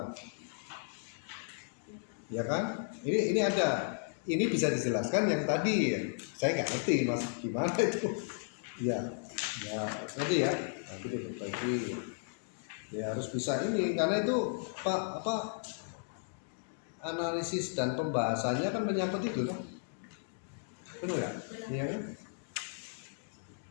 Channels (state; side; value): silent; right; digital silence